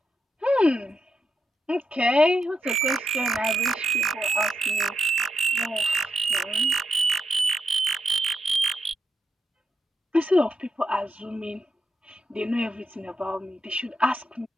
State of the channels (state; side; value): normal; both; correlation 0.84